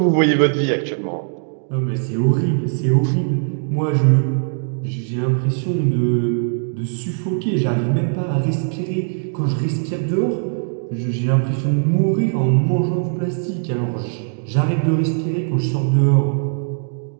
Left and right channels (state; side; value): silent; left; digital silence